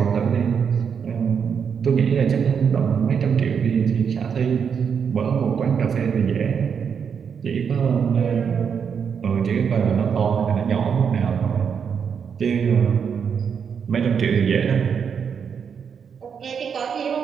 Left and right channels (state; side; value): quieter; left; 6.9 dB